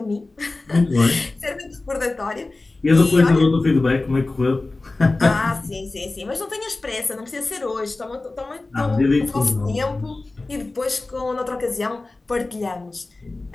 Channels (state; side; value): quieter; right; 3.2 dB